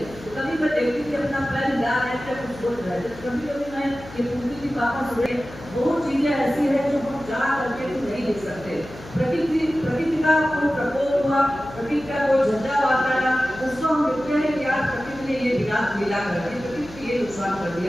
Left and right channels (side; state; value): left; noise; hum, 17 dB below the sound